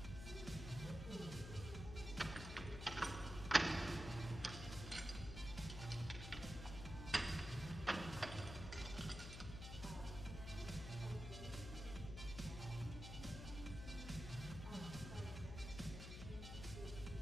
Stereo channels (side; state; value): left; noise; hum, 7 dB below the sound